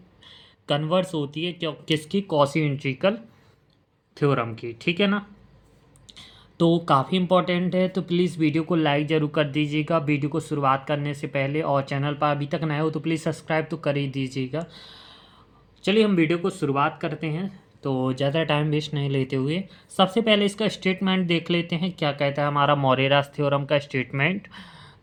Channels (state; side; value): identical; both; correlation 1.00